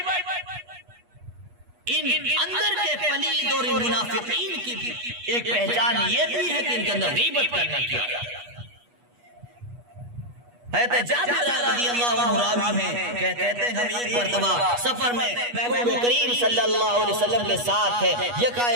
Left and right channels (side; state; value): left; late; 8.3 ms